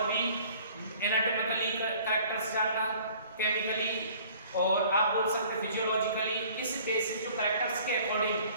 भी एनाटॉमिकली कैरेक्टर्स जानना, केमिकली, और आप बोल सकते हैं फिजियोलॉजिकली। इस बेसिस जो कैरेक्टर्स के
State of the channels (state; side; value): inverted; both; correlation -0.53